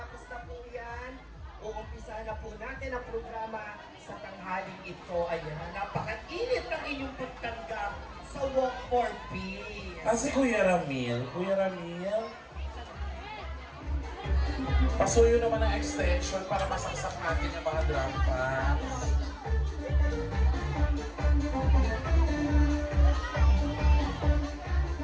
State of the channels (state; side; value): identical; both; correlation 1.00